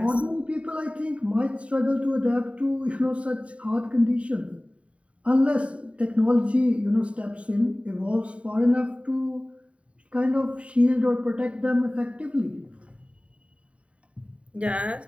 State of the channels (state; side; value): late; left; 0.063 ms